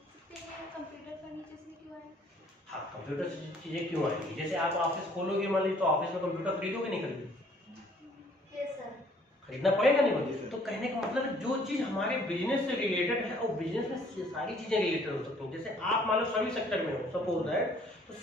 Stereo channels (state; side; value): normal; both; correlation 0.60